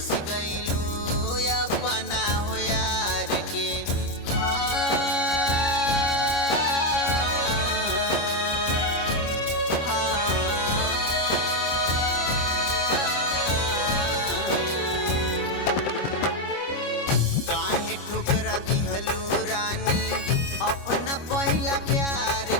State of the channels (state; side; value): late; right; 25 ms